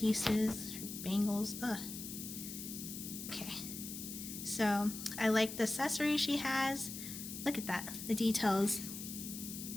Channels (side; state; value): left; noise; hiss, 8 dB below the sound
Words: her bangles. Okay. So I like the accessories she has. Look at that, the details.